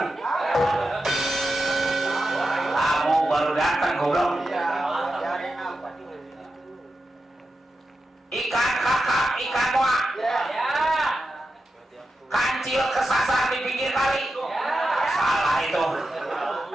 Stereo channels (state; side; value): normal; both; correlation 0.90